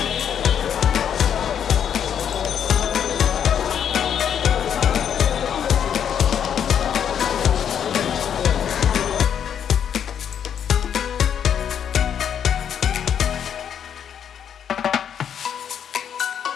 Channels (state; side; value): quieter; right; 8.6 dB